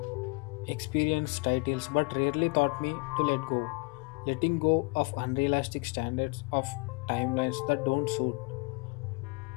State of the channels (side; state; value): right; quieter; 30.4 dB